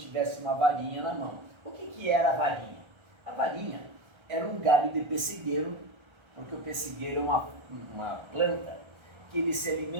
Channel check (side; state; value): left; late; 1.3 ms